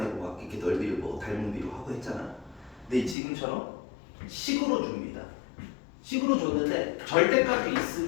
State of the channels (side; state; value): right; drops out; at 3.2 s